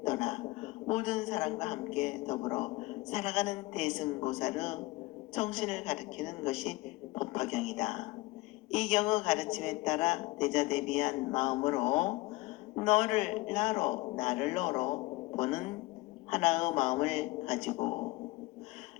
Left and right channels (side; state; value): right; quieter; 20.9 dB